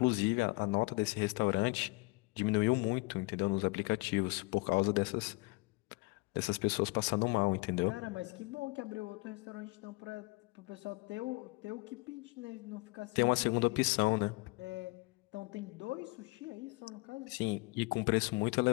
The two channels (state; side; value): quieter; right; 25.7 dB